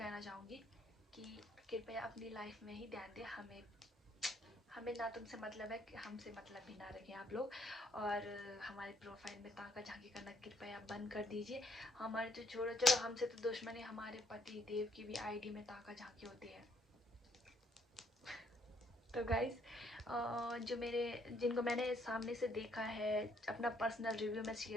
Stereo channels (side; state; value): both; normal; correlation 0.67